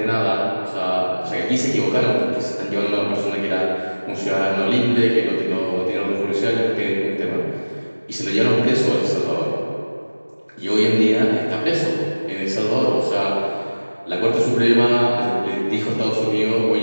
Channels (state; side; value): inverted; both; correlation -1.00